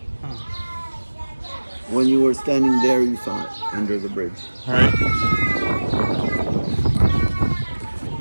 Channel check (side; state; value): both; inverted; correlation -1.00